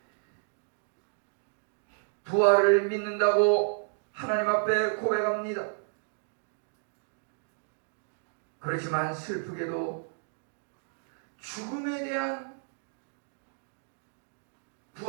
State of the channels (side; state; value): left; silent; digital silence